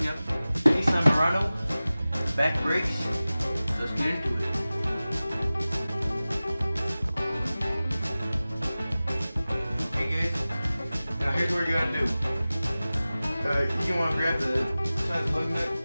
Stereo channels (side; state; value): both; inverted; correlation -0.97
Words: up Nissan Murano back brakes. Let's get into it. Okay guys, now here's what you gotta do. You want to grab the size lug nut